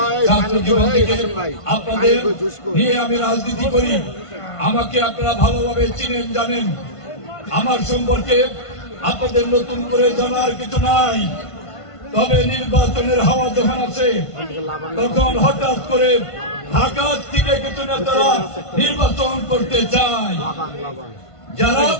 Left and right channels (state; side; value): late; right; 1.5 ms